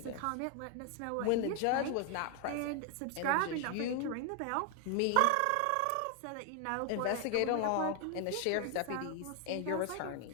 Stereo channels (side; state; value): both; different; correlation 0.01